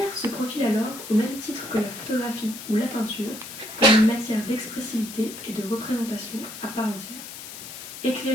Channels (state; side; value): noise; left; hiss, 12 dB below the sound